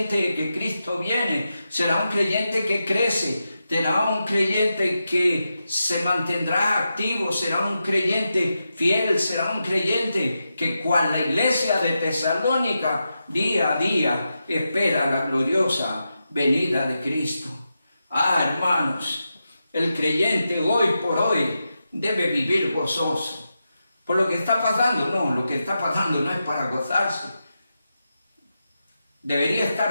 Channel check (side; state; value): both; inverted; correlation -0.89